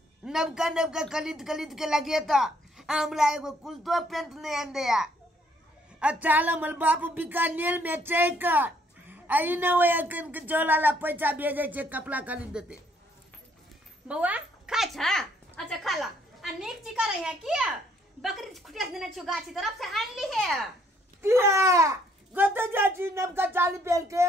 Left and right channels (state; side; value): normal; both; correlation 0.66